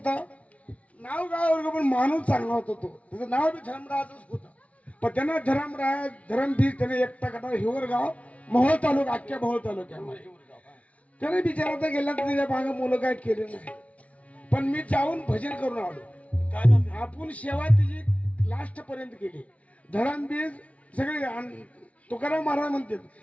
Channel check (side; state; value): right; late; 0.066 ms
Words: नाव गाव पण माणूस चांगला होता तो त्याचं नाव बी धर्मराजच होतं पण त्यांना धरमबीज त्याने एकटा कटा हिवरगाव मोहोळ तालुका अख्ख्या मोहोळ तालुक्यामध्ये त्याने बिचारा गेला तर त्याच्या मागे मुलं काय केले नाही पण मी जाऊन भजन करून आलो. आपण सेवा तिची लास्ट पर्यंत केली. धरमबीज सगळे तुकाराम महाराज म्हणतात